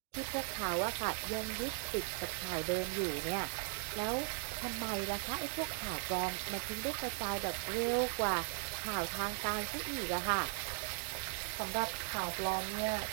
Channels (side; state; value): left; silent; 52 dB below the other